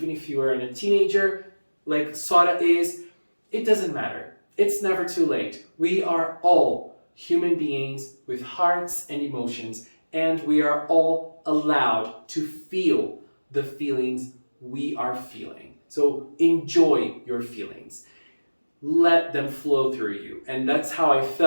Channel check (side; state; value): both; inverted; correlation -1.00